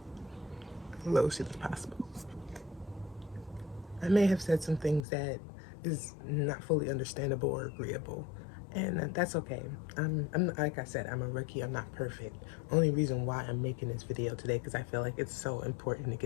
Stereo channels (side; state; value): right; drops out; at 5.1 s